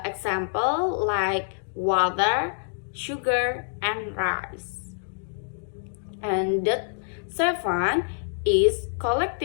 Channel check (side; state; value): right; silent; digital silence